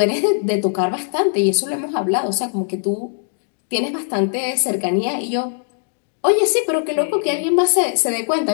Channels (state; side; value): silent; right; digital silence